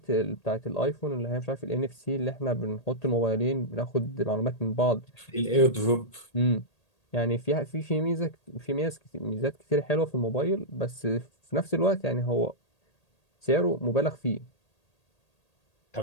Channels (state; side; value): late; right; 1.8 ms